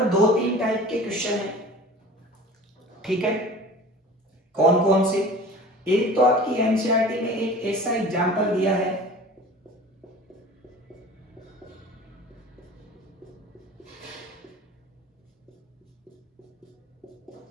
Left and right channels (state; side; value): normal; both; correlation 0.41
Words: 2-3 टाइप के क्वेश्चन है, ठीक है। कौन कौन से? एक तो आपकी एनसीईआरटी में एक ऐसा एग्जांपल दिया है,